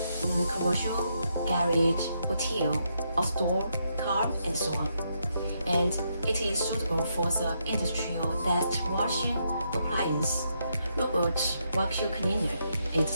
commercial, garage, hotel, outdoor, car, and so on. And it is suitable for the industrial dust washing appliance, robot vacuum cleaner,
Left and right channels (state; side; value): inverted; both; correlation -0.79